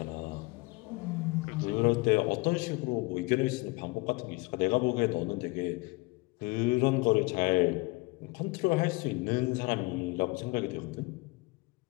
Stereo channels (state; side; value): quieter; right; 24.9 dB